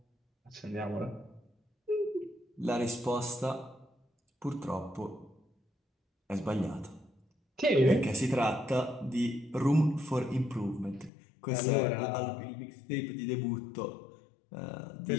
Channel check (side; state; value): right; drops out; at 11.1 s